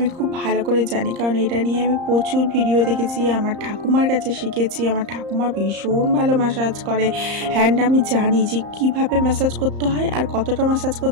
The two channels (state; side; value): late; left; 34 ms